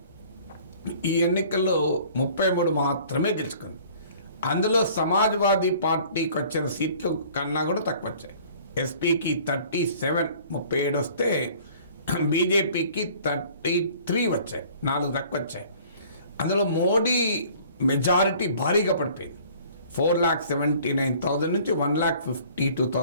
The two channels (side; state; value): both; inverted; correlation -0.52